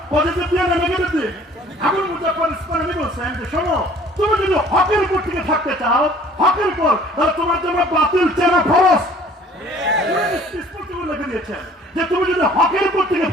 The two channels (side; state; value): both; normal; correlation 0.53